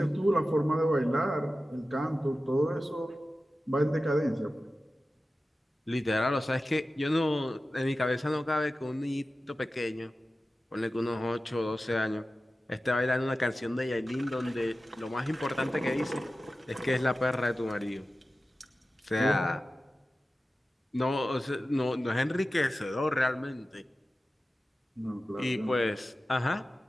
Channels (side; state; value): both; normal; correlation 0.94